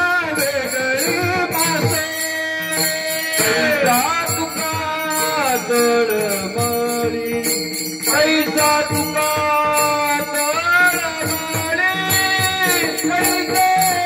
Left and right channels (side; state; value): both; identical; correlation 1.00